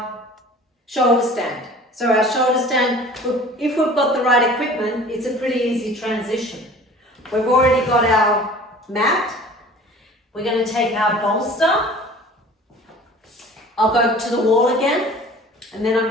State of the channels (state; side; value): normal; both; correlation 0.45